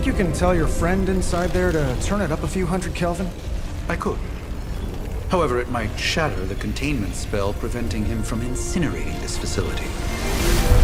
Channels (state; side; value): identical; both; correlation 1.00